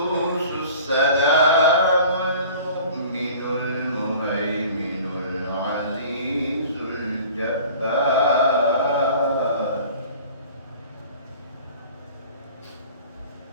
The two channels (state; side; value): inverted; both; correlation -0.45